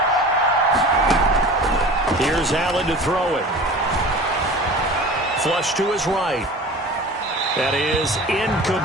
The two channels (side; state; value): both; normal; correlation 0.39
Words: Here's Allen to throw it. Flush to his right. That is